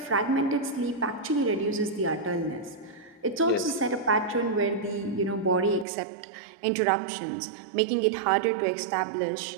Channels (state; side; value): drops out; left; at 5.9 s